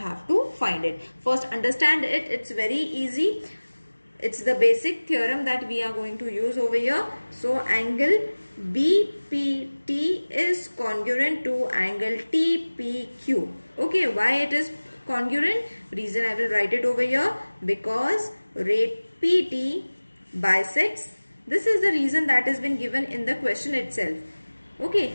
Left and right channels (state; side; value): inverted; both; correlation -1.00